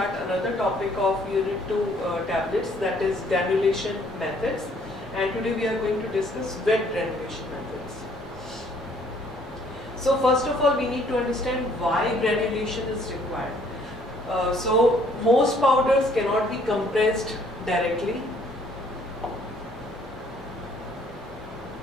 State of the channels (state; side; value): normal; both; correlation 0.62